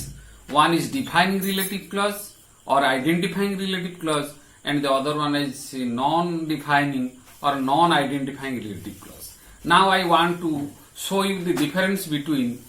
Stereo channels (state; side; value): identical; both; correlation 1.00